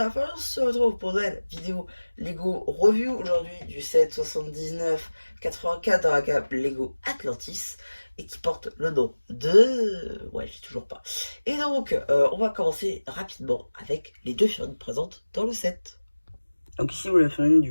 la fin, on se retrouve pour une vidéo Lego Review aujourd'hui du set 79-84 dans la gamme Lego Atlantis et qui porte le nom de... Ouais, j'ai toujours pas. Et donc, on va commencer rapidement avec les deux figurines présentes dans le set. Donc ici, vous la figurine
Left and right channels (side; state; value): both; inverted; correlation -1.00